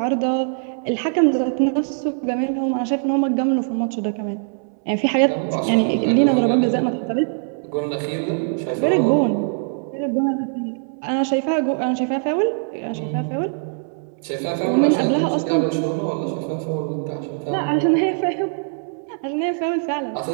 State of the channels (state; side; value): silent; left; 64 dB below the other